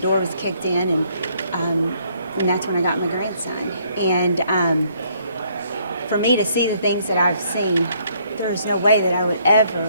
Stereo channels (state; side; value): inverted; both; correlation -0.66